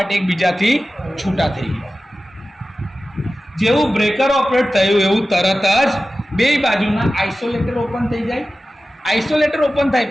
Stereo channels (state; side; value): normal; both; correlation 0.95